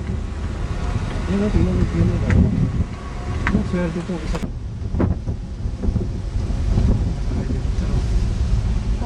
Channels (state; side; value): identical; both; correlation 1.00